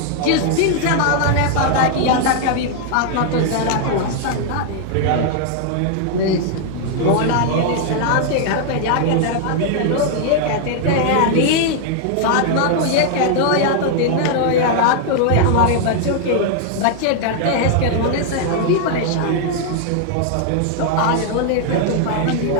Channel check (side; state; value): both; different; correlation 0.00